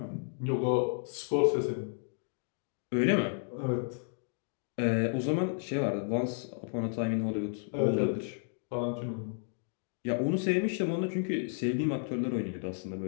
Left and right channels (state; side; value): silent; right; digital silence